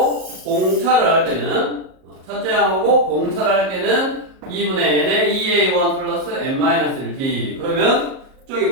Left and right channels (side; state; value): left; late; 38 ms